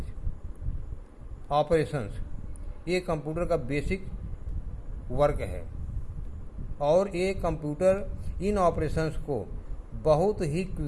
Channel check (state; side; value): identical; both; correlation 1.00